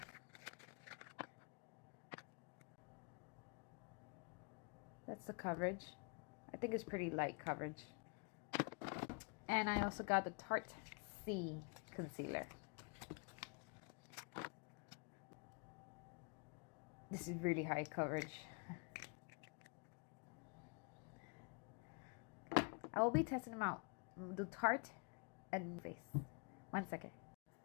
That's the coverage. I think it's pretty light coverage. And I also got the Tarte C concealer. This is really high coverage. I will be testing them out. The Tarte and face. 1 second.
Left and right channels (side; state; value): right; quieter; 34.7 dB